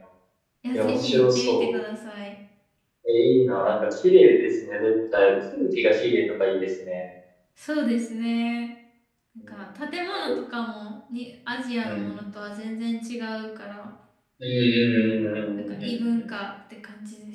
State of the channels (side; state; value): both; identical; correlation 1.00